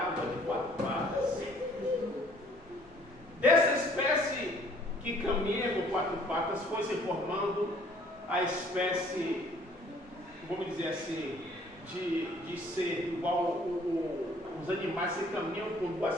de 4 patas. Dessa espécie que caminha com 4 patas foi se formando a espécie, vamos dizer assim, de ser igual os animais que caminham com 2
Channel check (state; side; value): normal; both; correlation 0.58